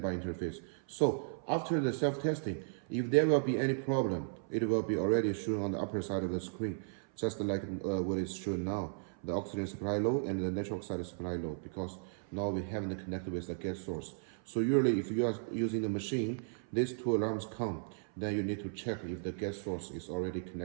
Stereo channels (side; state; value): left; silent; 54 dB below the other